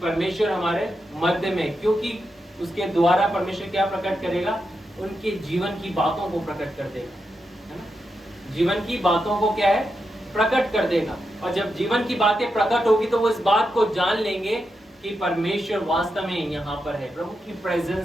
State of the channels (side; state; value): both; normal; correlation 0.86